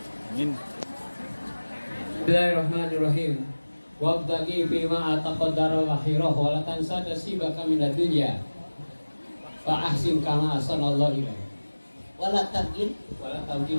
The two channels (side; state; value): both; inverted; correlation -1.00